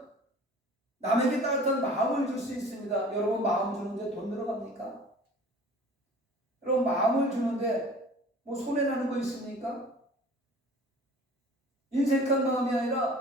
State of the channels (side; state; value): both; normal; correlation 0.45